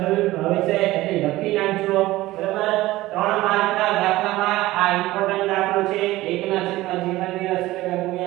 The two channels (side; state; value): left; quieter; 17.5 dB